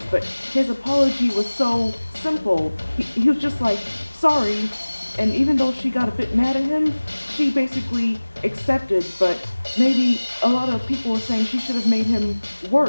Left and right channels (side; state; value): both; inverted; correlation -1.00